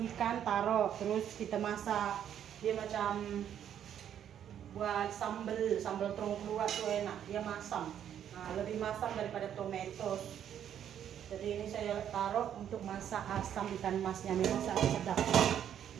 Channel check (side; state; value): left; quieter; 9.7 dB